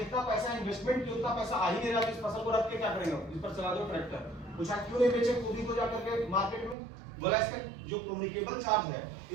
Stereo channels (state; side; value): drops out; left; at 6.8 s